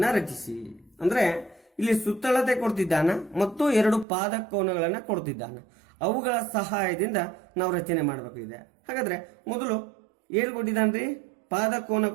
ರಚಿಸಿ. ಅಂದ್ರೆ ಇಲ್ಲಿ ಸುತ್ತಳತೆ ಕೊಡ್ತಿದ್ದಾನ ಮತ್ತು 2 ಪಾದ ಕೋನಗಳನ್ನು ಕೊಡ್ತಿದ್ದಾನ. ಅವುಗಳ ಸಹಾಯದಿಂದ ನಾವು ರಚನೆ ಮಾಡಬೇಕಿದೆ. ಹಾಗಾದ್ರೆ ಮೊದಲು ಏನು ಕೊಟ್ಟಿದ್ದಾನ್ರಿ? ಪಾದ ಕೋನ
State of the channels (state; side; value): drops out; left; at 4.0 s